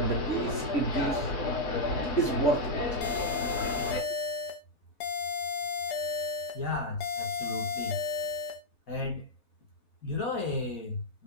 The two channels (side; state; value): right; late; 3.5 ms